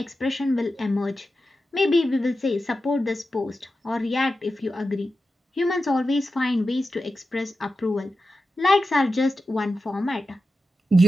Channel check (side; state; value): both; normal; correlation 0.91